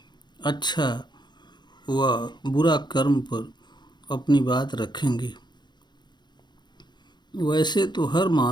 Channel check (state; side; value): late; right; 0.21 ms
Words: अच्छा व बुरा कर्म पर अपनी बात रखेंगे। वैसे तो हर